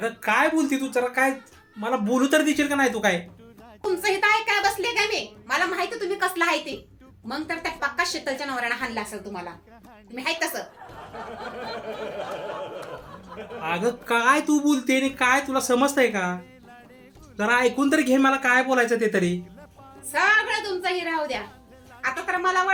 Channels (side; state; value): both; identical; correlation 1.00